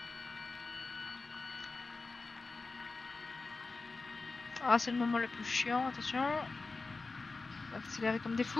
Ah, c'est le moment le plus chiant, attention. On va accélérer comme des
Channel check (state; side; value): quieter; right; 3.8 dB